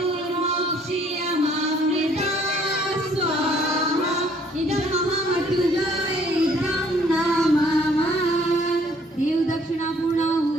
स्वाहा। इदं महामृत्युंजय इदं नमः। देव दक्षिणा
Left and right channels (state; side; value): normal; both; correlation 0.61